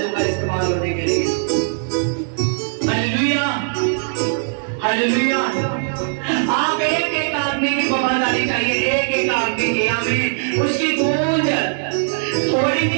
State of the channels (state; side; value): silent; left; digital silence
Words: इस्तेमाल होने के लिए। Hallelujah, hallelujah. आप एक एक आदमी की वफादारी चाहिए, एक एक आदमी की। आमीन। उसकी गूंज थोड़ी